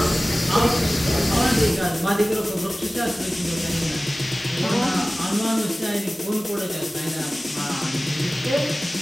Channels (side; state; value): both; normal; correlation 0.97